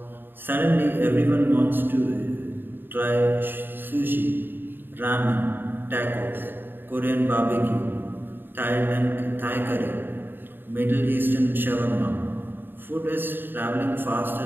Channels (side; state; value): left; late; 0.096 ms